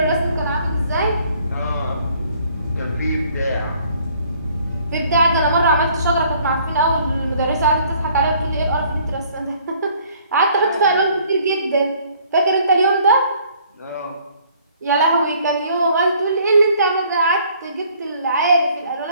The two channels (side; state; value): both; inverted; correlation -0.60